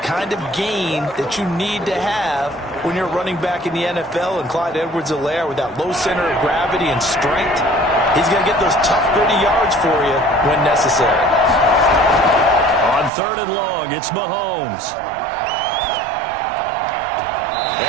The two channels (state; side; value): drops out; left; at 13.1 s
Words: kind of gain that you need to have when you're running back in the NFL. And Clyde Edwards-Helaire, with that low center of gravity and strength, he's going to get those tough, gritty yards for you when necessary. On 3rd and long, it's Mahomes.